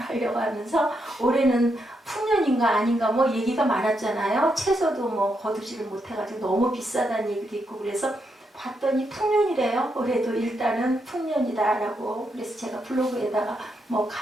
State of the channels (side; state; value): both; normal; correlation 0.81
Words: 하면서 올해는 풍년인가 아닌가 뭐 얘기가 많았잖아요. 채소도 뭐 거두지를 못해가지고 너무 비싸다는 얘기도 있고 그래서 봤더니 풍년이래요. 올해도 일단은 풍년이다라고. 그래서 제가 블로그에다가 뭐